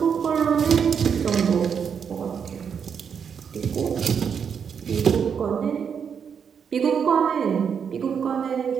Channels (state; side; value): quieter; left; 7.1 dB